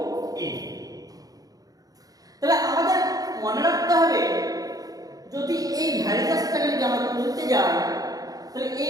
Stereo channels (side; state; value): left; late; 0.18 ms